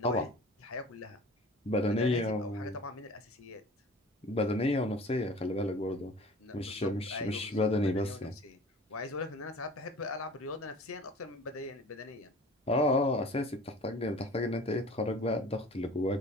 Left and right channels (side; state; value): both; normal; correlation 0.44